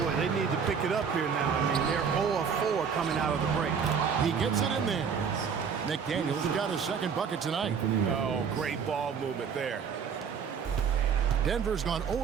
they need to pick it up here now. I mean, they're 0 of 4 coming out of the break. He gets it in there. McDaniels got his 2nd bucket tonight. Oh, great ball movement there. Denver's gone 0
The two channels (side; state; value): left; quieter; 6.6 dB